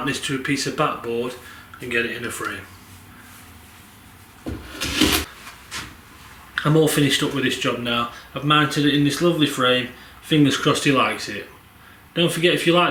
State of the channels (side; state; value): both; identical; correlation 1.00